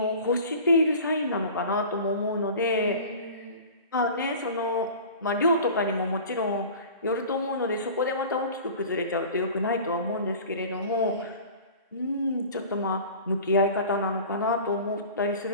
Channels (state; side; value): inverted; both; correlation -0.40